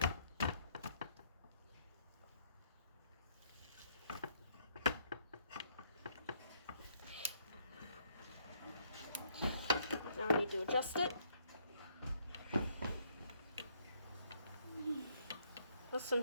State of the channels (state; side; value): inverted; both; correlation -0.69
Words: Now I need to adjust it. The